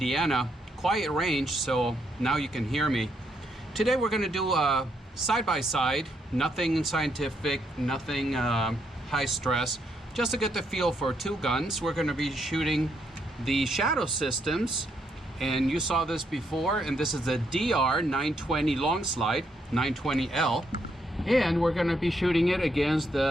Quiet range, so now you can hear me. Today we're going to do a side-by-side, nothing scientific, nothing high stress, just to get the feel for two guns. We're going to be shooting the Shadow Systems, and you saw this before, and this is the DR920 long slide, 920L, and we're going to be shooting it against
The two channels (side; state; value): both; normal; correlation 0.76